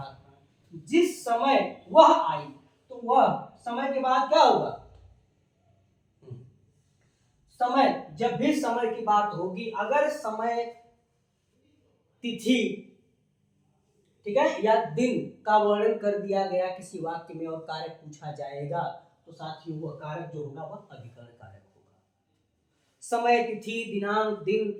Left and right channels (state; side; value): identical; both; correlation 1.00